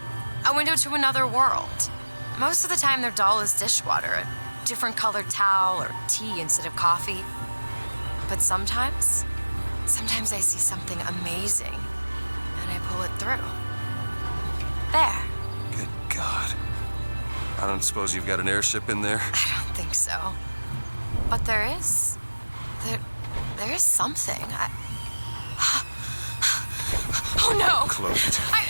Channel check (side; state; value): both; inverted; correlation -1.00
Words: A window to another world. Most of the time they're dull as dishwater, a different colored towel or tea instead of coffee. But sometimes I see something amazing and I pull it through. There. Good God. I don't suppose you've got an airship in there? I don't think so. But there is. There is something. Oh no! Close it.